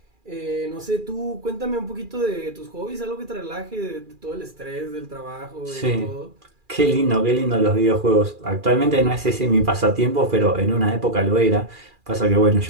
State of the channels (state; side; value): late; left; 2.4 ms